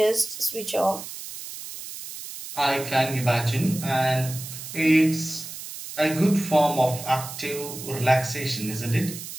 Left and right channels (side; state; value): right; noise; hiss, 11 dB below the sound